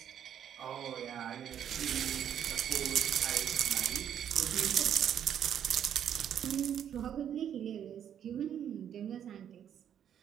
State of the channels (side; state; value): left; quieter; 9.4 dB